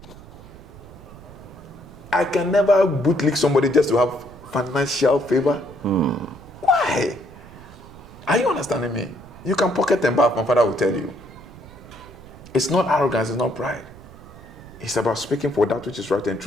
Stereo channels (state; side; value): noise; right; rumble, 19 dB below the sound